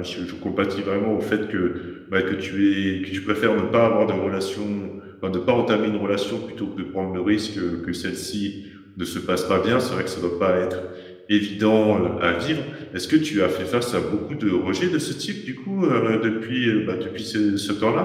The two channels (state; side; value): identical; both; correlation 1.00